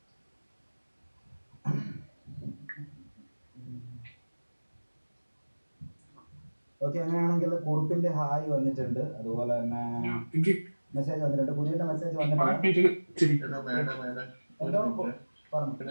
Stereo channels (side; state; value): both; inverted; correlation -1.00